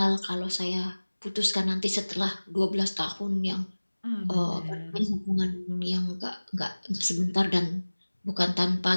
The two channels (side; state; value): both; inverted; correlation -1.00